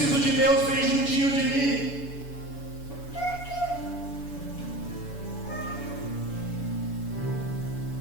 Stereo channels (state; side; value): late; right; 7.0 ms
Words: de Deus bem juntinho de mim.